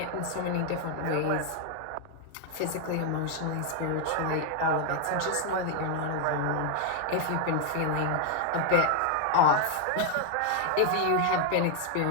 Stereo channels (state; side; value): different; both; correlation 0.00